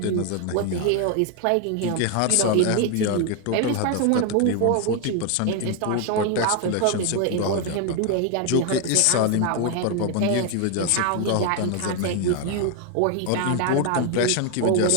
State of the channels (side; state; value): both; different; correlation 0.01